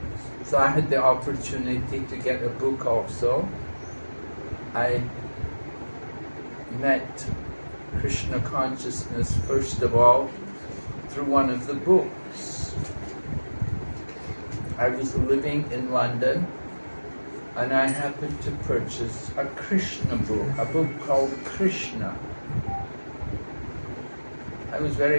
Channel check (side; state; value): both; inverted; correlation -1.00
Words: So I had the opportunity to get a book also. I met Krishna consciousness first of all through one of the books. I was living in London and I happened to purchase a Krishna book, a book called Krishna. I was